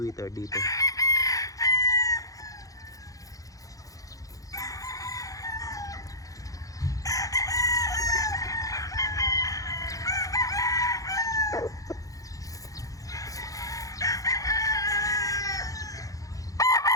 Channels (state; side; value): late; right; 0.17 ms